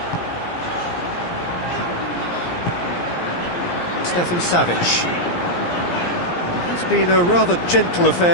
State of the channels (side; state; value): right; late; 17 ms